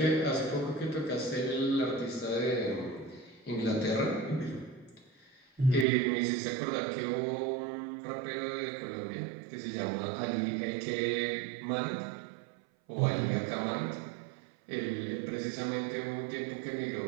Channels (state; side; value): drops out; left; at 5.9 s